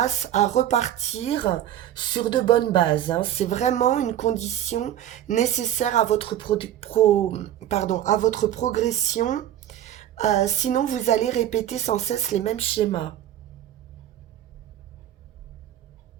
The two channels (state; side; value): quieter; left; 11.6 dB